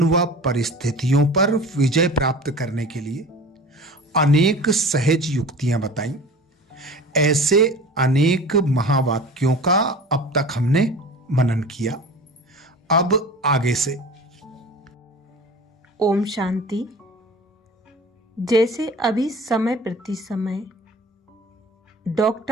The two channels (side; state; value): both; normal; correlation 0.38